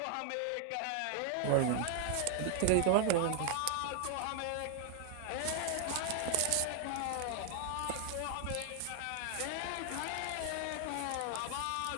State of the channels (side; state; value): both; different; correlation 0.00